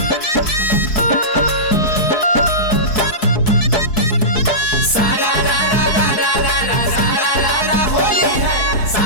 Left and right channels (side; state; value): right; late; 4.7 ms